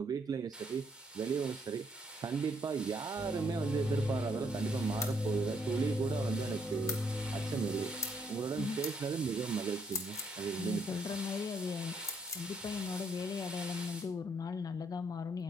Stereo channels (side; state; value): both; normal; correlation 0.71